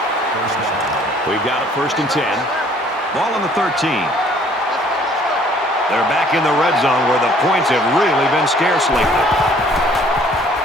We've got it 1st and 10. Ball on the 13. They're back in the red zone where the points have really been scarce lately.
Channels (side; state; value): both; normal; correlation 0.58